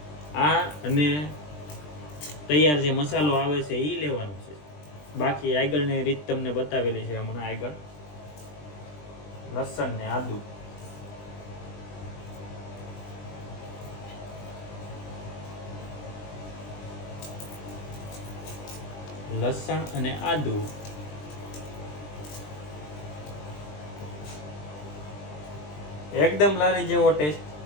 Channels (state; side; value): late; right; 20 ms